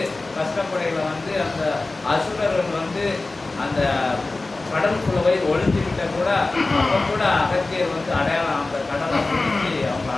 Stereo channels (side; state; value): right; quieter; 3.3 dB